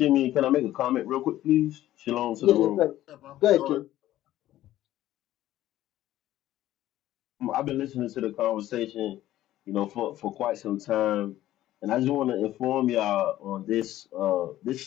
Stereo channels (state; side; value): quieter; right; 14.1 dB